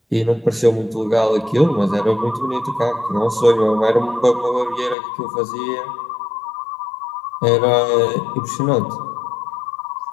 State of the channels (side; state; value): right; drops out; at 5.0 s